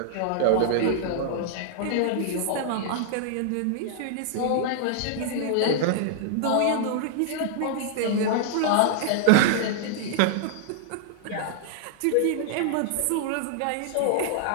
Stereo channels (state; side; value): different; both; correlation -0.01